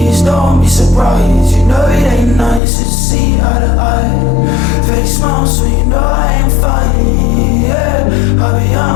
don't be surprised. You know it ain't nice to see eye to eye. Fake smile, so you know I ain't fine. Yeah, carry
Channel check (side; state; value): right; drops out; at 2.6 s